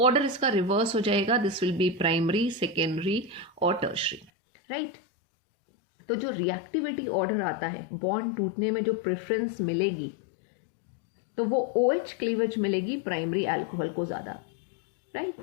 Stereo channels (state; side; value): drops out; right; at 4.3 s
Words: ऑर्डर इसका रिवर्स हो जाएगा. This will be primary, secondary और टर्शियरी, राइट. तो जो रिएक्टिविटी ऑर्डर आता है बॉन्ड टूटने में जो प्रेफरेंस मिलेगी तो वो OH क्लीवेज मिलेगी प्राइमरी अल्कोहल को ज़्यादा,